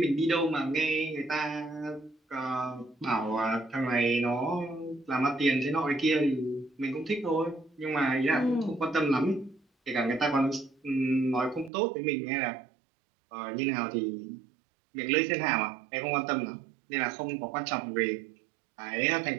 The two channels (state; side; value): drops out; left; at 11.7 s